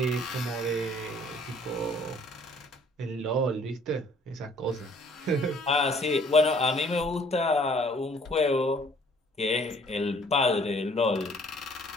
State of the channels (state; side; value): normal; both; correlation 0.58